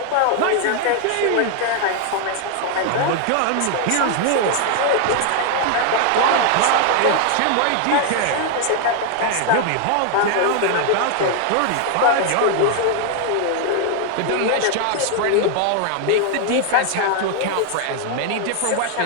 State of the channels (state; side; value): different; both; correlation 0.00